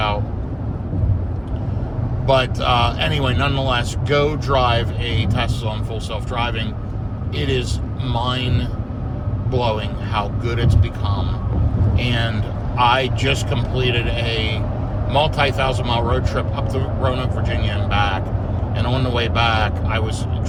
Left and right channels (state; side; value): identical; both; correlation 1.00